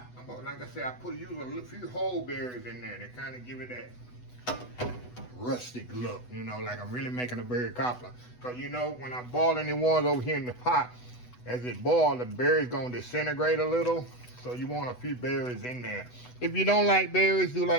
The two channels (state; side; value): late; right; 8.1 ms